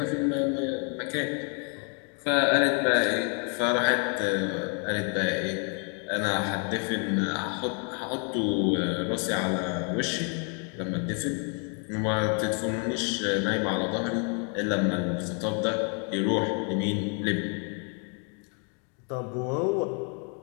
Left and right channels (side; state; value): right; quieter; 38.6 dB